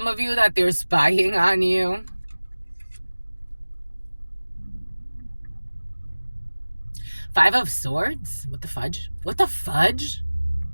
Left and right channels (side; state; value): both; inverted; correlation -1.00